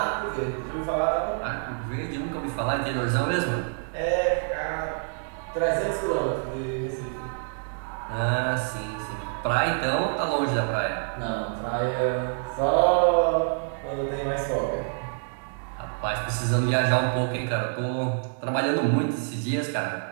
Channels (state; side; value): silent; left; digital silence